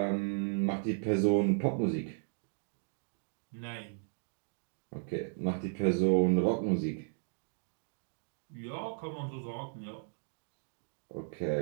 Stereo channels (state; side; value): silent; left; digital silence